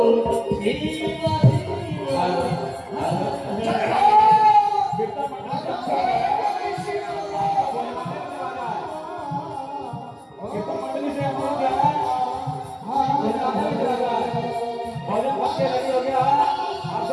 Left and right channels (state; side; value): identical; both; correlation 1.00